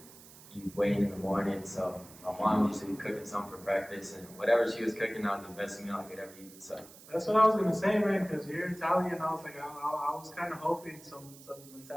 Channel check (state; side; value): noise; right; hiss, 20 dB below the sound